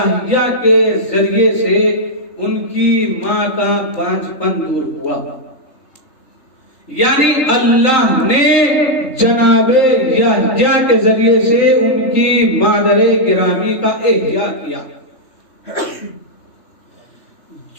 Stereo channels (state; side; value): late; right; 3.3 ms